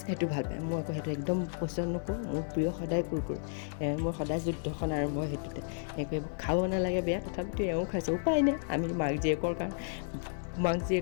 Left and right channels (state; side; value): silent; right; 56 dB below the other